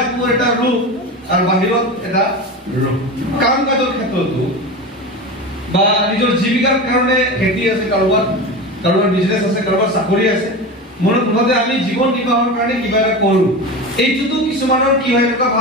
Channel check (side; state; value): both; normal; correlation 0.25